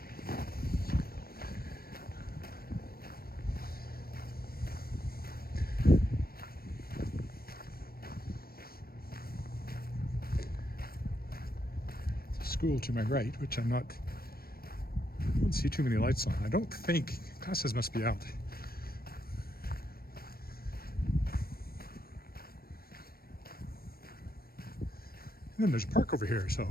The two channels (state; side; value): late; right; 0.44 ms